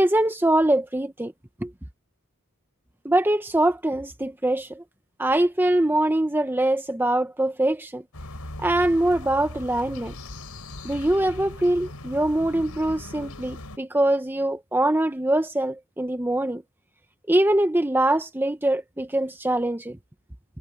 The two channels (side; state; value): both; normal; correlation 0.90